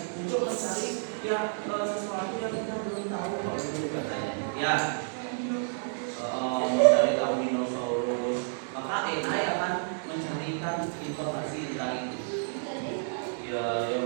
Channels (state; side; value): silent; left; digital silence